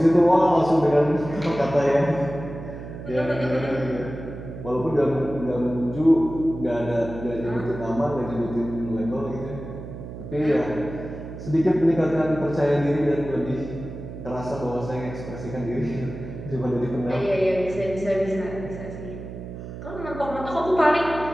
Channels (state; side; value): noise; right; hum, 11 dB below the sound